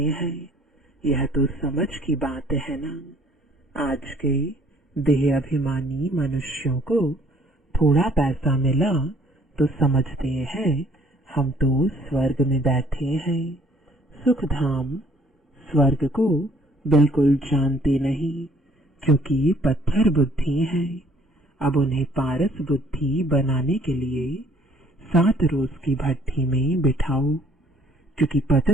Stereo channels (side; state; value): both; normal; correlation 0.60